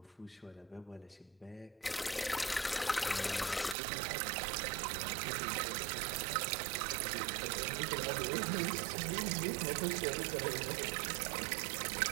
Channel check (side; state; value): left; drops out; at 3.8 s